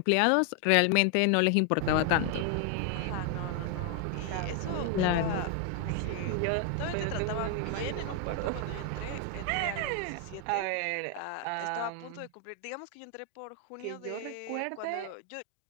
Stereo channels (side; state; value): both; different; correlation 0.00